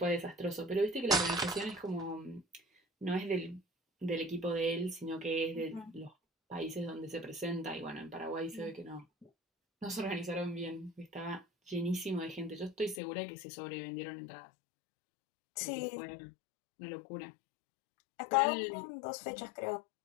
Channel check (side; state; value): right; drops out; at 13.0 s